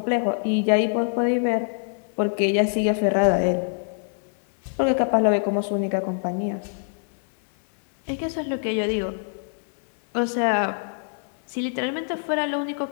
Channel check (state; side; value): silent; right; 62 dB below the other